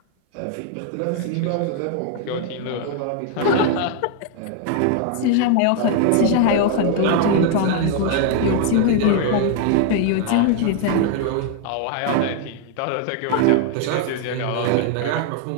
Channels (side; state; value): both; different; correlation 0.00